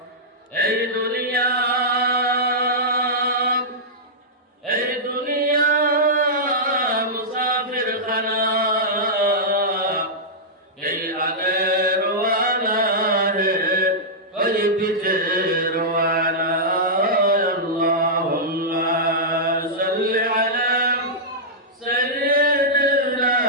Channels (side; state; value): both; normal; correlation -0.11